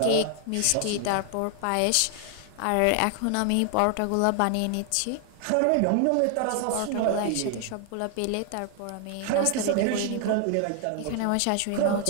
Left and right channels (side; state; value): both; different; correlation 0.00